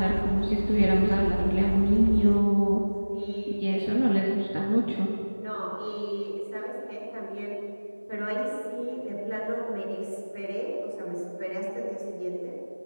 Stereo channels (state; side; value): inverted; both; correlation -1.00